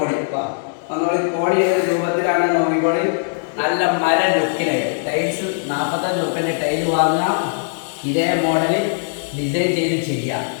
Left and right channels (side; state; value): right; silent; digital silence